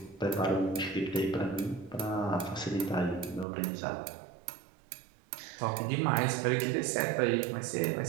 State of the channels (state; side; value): drops out; left; at 3.5 s